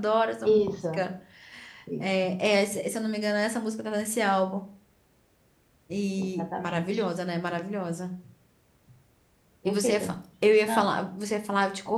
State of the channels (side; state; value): both; identical; correlation 1.00